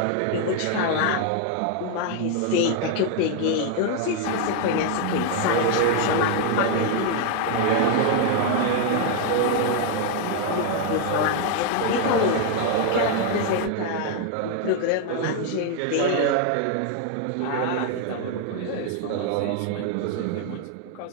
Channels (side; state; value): both; different; correlation 0.00